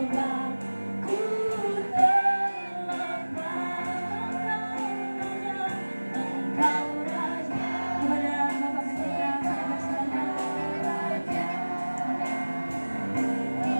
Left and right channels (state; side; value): inverted; both; correlation -1.00